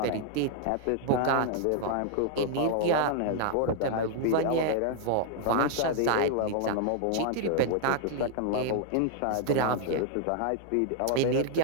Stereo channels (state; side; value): different; both; correlation -0.01